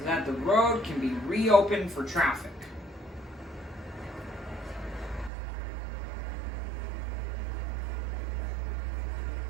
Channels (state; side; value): drops out; left; at 5.3 s